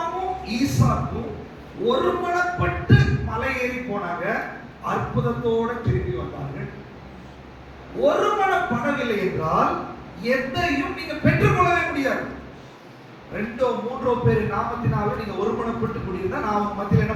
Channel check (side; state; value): both; identical; correlation 1.00